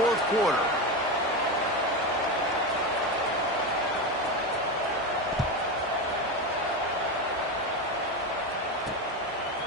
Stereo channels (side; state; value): both; normal; correlation 0.17